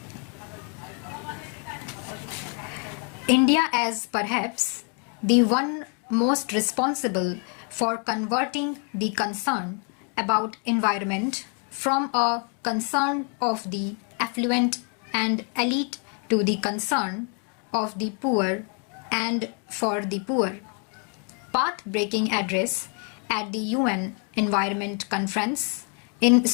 India as perhaps the one most responsible for converting the concern about environment from a concern of the affluent and elite to the concern of the poor and for the poor. Path-breaking address at the UN Environment Conference in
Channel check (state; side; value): quieter; right; 39.1 dB